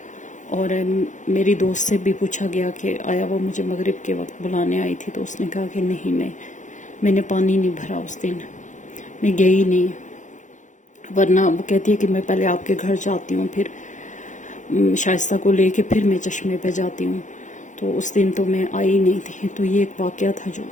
اور میری دوست سے بھی پوچھا گیا کہ آیا وہ مجھے مغرب کے وقت بلانے آئی تھی، تو اس نے کہا کہ نہیں، میں نے پانی نہیں بھرا اس دن، میں گئی نہیں، ورنہ وہ کہتی ہے کہ میں پہلے آپ کے گھر جاتی ہوں، پھر شائستہ کو لے کے پھر میں چشمے پہ جاتی ہوں، تو اس دن تو میں آئی نہیں تھی۔ تو یہ ایک واقعہ تھا جو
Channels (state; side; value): late; right; 0.36 ms